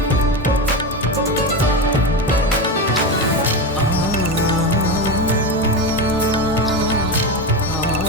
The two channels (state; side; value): normal; both; correlation 0.18